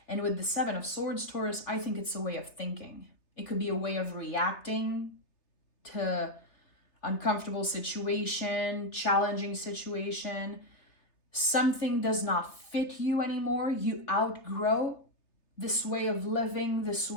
And with the Seven of Swords, Taurus, I think it's a way of thinking. It could be a way of reacting to uncomfortable situation, challenging situation. Something does not fit you anymore. You outgrow this way of living, this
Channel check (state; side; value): late; right; 3.3 ms